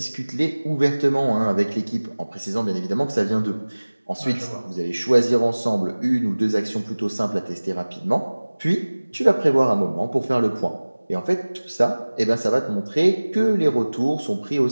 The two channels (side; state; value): both; inverted; correlation -1.00